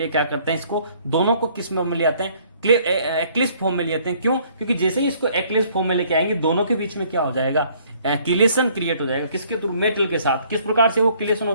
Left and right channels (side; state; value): both; inverted; correlation -0.61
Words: क्या करते हैं, इसको दोनों को किस में ले आते हैं, एक्लिप्स फॉर्म में ले आते हैं। क्यों? क्योंकि जैसे ही इसको एक्लिप्स फॉर्म में लेके आएंगे दोनों के बीच में क्या हो जाएगा, किलेशन क्रिएट हो जाएगा। किसके थ्रू, मेटल के साथ। किस प्रकार से वो किलेशन